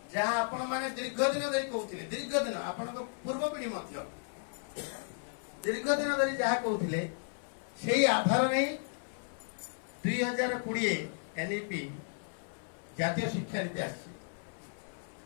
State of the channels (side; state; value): right; silent; 55 dB below the other